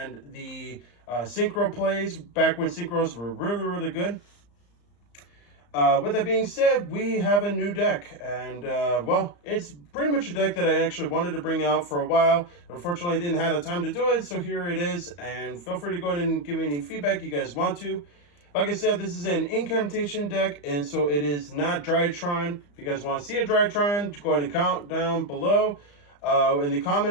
the synchro plays back when synchros were really good. With that being said, we have a new deck, and well, it's pretty much a deck that I actually wanted to bring out for a while. Unfortunately, I didn't have the time to do it, so here it is, and feel free to go ahead and give me any feedback you guys want to. Like I said, this is an incantation deck, and so it is not Drytron. If you guys want to see a Drytron, go ahead and count down below in the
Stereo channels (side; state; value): right; late; 34 ms